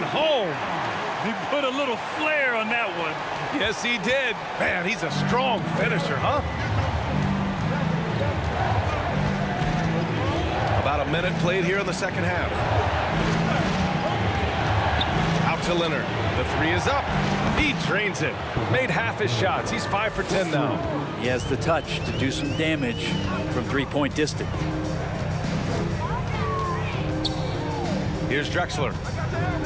home. He put a little flair on that one. Yes, he did. Man, he's a strong finisher, huh? About a minute played here in the second half. Out to Leonard. The three is up. He drains it. Made half his shots. He's 5 for 10 now. He has the touch to do some damage from three-point distance. Here's Drexler.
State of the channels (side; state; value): both; identical; correlation 1.00